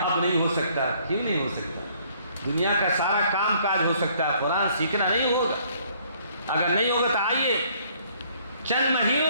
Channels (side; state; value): both; inverted; correlation -0.62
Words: نہیں ہو سکتا. کیوں نہیں ہو سکتا؟ دنیا کا سارا کام کاج ہو سکتا ہے, قرآن سیکھنا نہیں ہوگا. اگر نہیں ہوگا تو آئیے چند